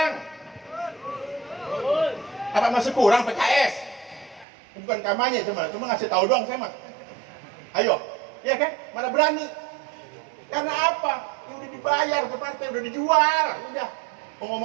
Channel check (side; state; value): left; drops out; at 4.5 s